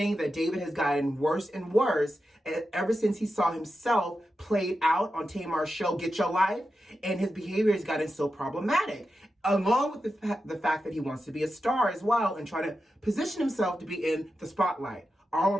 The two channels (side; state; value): both; normal; correlation 0.90